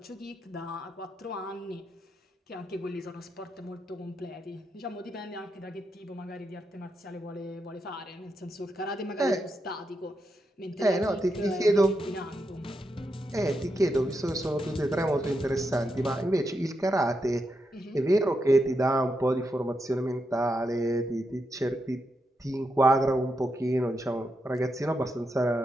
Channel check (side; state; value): both; normal; correlation 0.84